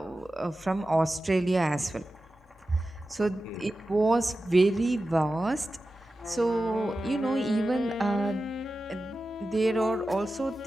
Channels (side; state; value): both; normal; correlation 0.93